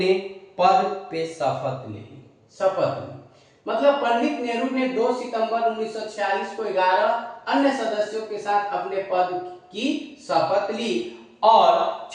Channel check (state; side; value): identical; both; correlation 1.00